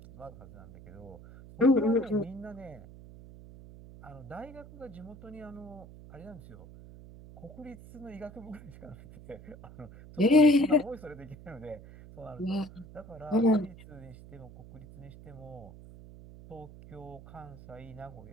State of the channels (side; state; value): right; noise; hum, 17 dB below the sound